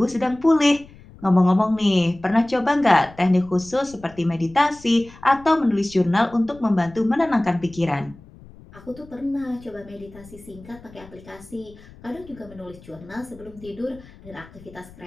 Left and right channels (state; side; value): noise; left; rumble, 21 dB below the sound